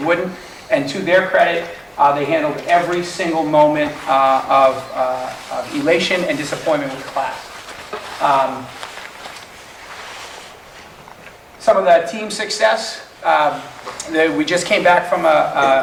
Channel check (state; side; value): identical; both; correlation 1.00